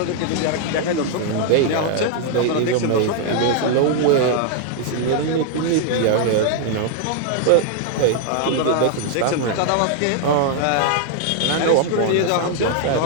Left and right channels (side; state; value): both; different; correlation 0.00